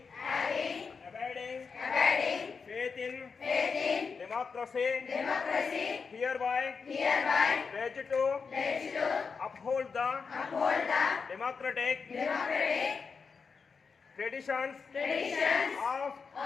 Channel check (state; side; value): quieter; right; 5.3 dB